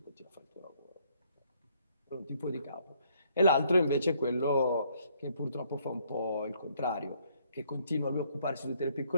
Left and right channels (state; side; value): inverted; both; correlation -0.67